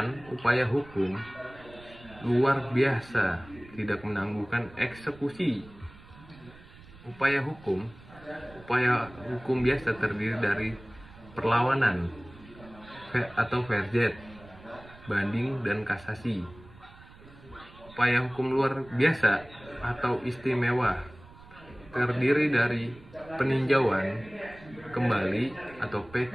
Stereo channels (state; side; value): noise; right; rumble, 21 dB below the sound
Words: upaya hukum luar biasa tidak menanggungkan eksekusi. Upaya hukum biasa terdiri dari perlawanan atau verjet, banding, dan kasasi. Upaya hukum luar biasa atau istimewa terdiri dari peninjauan kembali atau